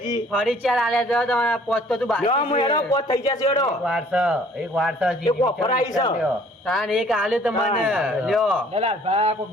ગઈ. ફરી ચાર આલ્યા તો તમારા પોચ તો તું બાકી લ્યો, હું હેડો, પોત થઈ જશે હેડો. એક વારસો એક ઓફર આવી છે. તાન એક આલ્યો તમને લ્યો દલાલભા કોઈ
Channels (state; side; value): normal; both; correlation 0.56